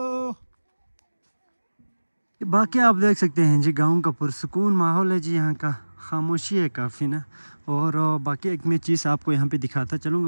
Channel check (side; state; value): both; inverted; correlation -1.00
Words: बाकी आप देख सकते हैं जी गांव का पुरसुकून माहौल है जी। यहाँ का खामोशी है काफ़ी ना। और बाकी एक मैं चीज़ आपको यहाँ पे दिखाता